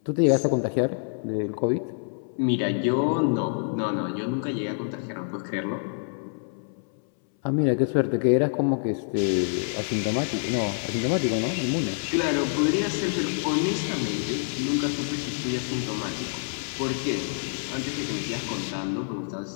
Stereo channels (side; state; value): right; silent; 60 dB below the other